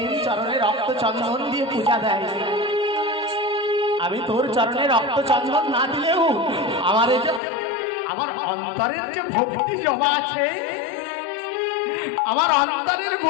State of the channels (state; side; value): drops out; right; at 7.4 s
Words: চরণে রক্ত চন্দন দিয়ে পূজা দেয়। আমি তোর চরণে রক্ত চন্দন না দিলেও আমার এই যে আমার অন্তরের যে ভক্তি জমা আছে, আমার অন্তরের